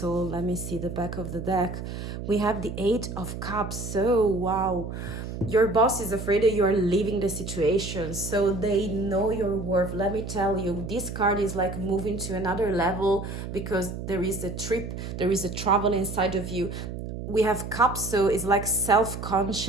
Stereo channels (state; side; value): noise; right; hum, 7 dB below the sound